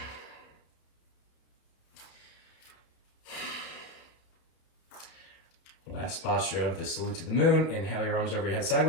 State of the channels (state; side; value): late; right; 31 ms